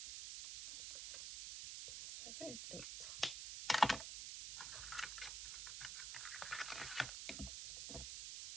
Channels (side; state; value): right; noise; hiss, 5 dB below the sound